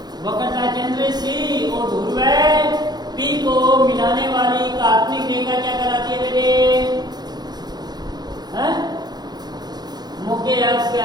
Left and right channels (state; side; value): late; left; 0.20 ms